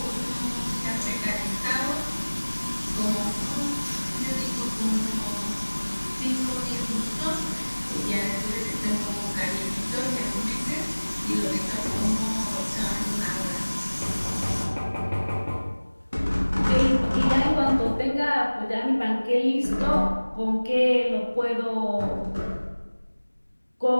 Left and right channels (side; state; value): both; inverted; correlation -1.00